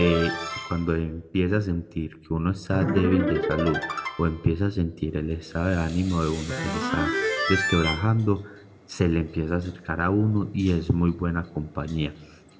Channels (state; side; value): identical; both; correlation 1.00